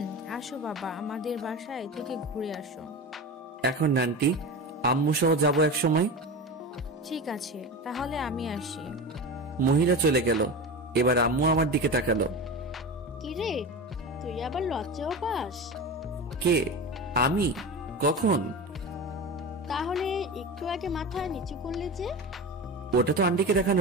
আসো বাবা, আমাদের বাসায় থেকে ঘুরে আসো। এখন আন্টি, আম্মু সহ যাবো এক সময়। ঠিক আছে, তাহলে আমি আসি। মহিলা চলে গেল। এবার আম্মু আমার দিকে তাকালো। কিরে, তুই আবার লজ্জাও পাস? কে? আমি? কখন? তাহলে একটু আগে মাথা নিচু করলে যে? ওটা তো আন্টিকে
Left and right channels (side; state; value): both; normal; correlation 0.26